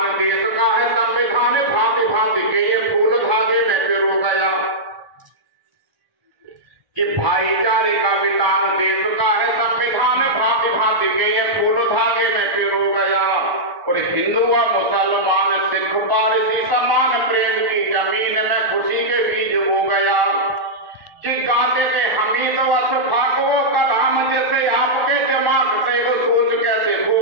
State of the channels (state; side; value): late; left; 1.1 ms